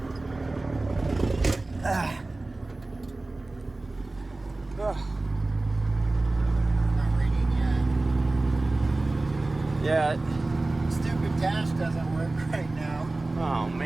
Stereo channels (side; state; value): left; quieter; 3.0 dB